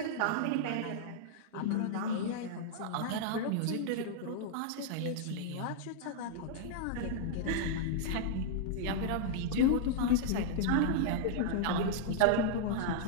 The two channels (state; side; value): different; both; correlation -0.01